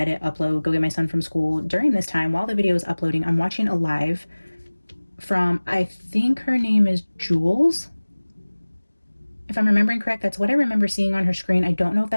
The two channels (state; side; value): inverted; both; correlation -1.00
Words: upload, go get my son from school. During this time, while the video is uploading, I'm watching a live from, I think her name is Jules. If I'm remembering correct, that's what I remember seeing on her screen. I don't know if